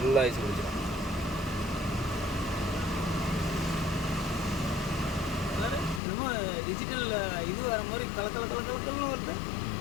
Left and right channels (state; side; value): drops out; right; at 6.0 s